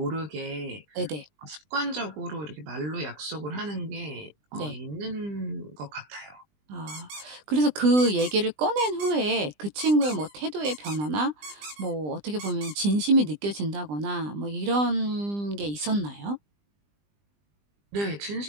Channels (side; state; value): left; late; 20 ms